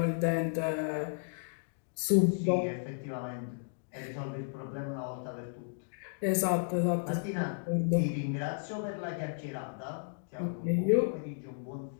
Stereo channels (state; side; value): silent; right; digital silence